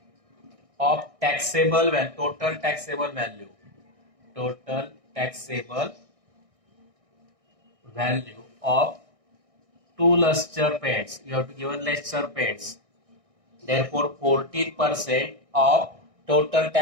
of taxable value, total taxable value. Total taxable value of 2 luster paints. You have to give luster paints. Therefore, 14% of total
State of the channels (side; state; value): left; late; 1.6 ms